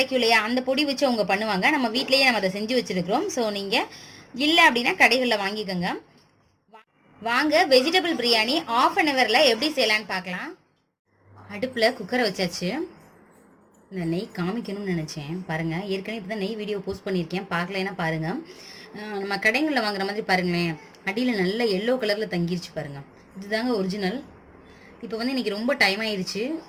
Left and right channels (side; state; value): both; identical; correlation 1.00